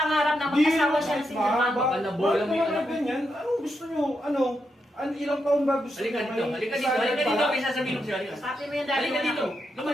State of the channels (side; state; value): both; normal; correlation 0.83